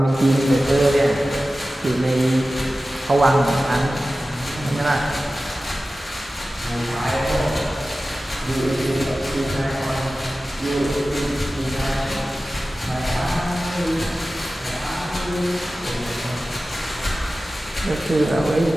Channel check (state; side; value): normal; both; correlation 0.95